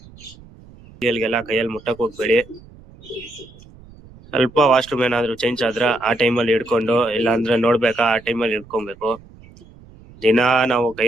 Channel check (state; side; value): noise; right; rumble, 23 dB below the sound